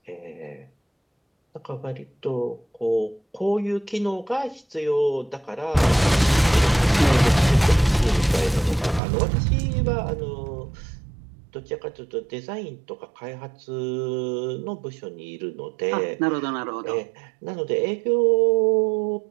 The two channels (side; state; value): left; drops out; at 9.0 s